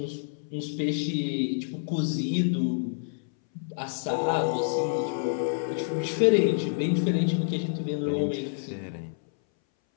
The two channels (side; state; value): right; silent; 59 dB below the other